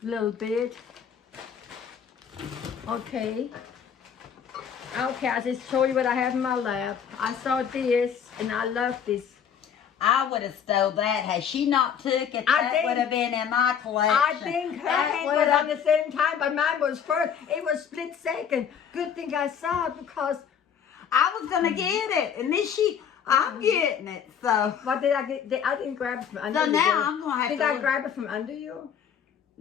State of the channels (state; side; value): quieter; right; 7.9 dB